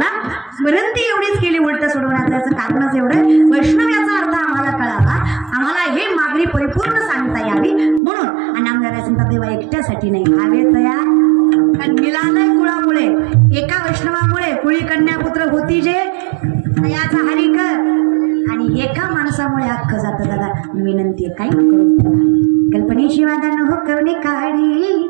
विनंती एवढीच केली उलटा सोडवण्याचं कारणच एवढं, वैष्णव याचा अर्थ आम्हाला कळावा, आम्हाला हे मागणी परिपूर्ण सांगता यावी म्हणून. आणि आमदार सांगता देवा एकट्यासाठी नाही, भावे तयार. कारण मिलालय कुळामुळे, एका वैष्णवामुळे कुळी कन्यापुत्र होती जे याचा हरी कर, आणि एका माणसामुळे अख्खं जातं. दादा विनंती आहे, काही नको कल्पनेची वादा न हो करणे काढी,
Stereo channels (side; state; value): left; drops out; at 8.0 s